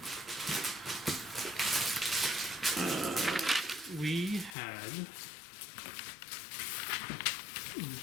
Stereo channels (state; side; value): drops out; right; at 4.5 s